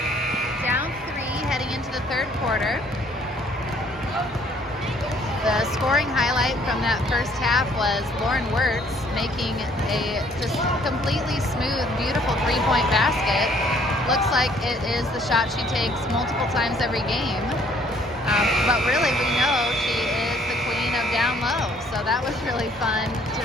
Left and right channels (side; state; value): both; normal; correlation 0.61